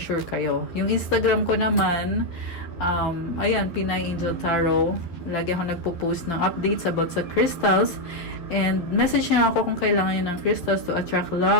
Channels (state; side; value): late; right; 11 ms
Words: sure kayo. Yung Instagram ko naman, ayan, Pinay Angel Tarot. Lagi ako nagpo-post ng updates about sa crystals. And message nyo ako kung kailangan nyo ng crystals to attract